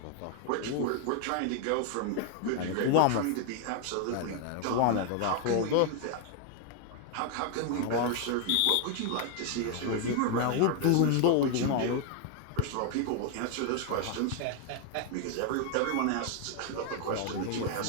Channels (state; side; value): different; both; correlation 0.00